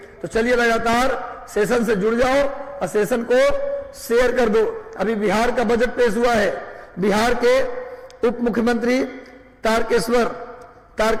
तो चलिए लगातार सेशन से जुड़ जाओ और सेशन को शेयर कर दो। अभी बिहार का बजट पेश हुआ है। बिहार के उप मुख्यमंत्री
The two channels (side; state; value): both; identical; correlation 1.00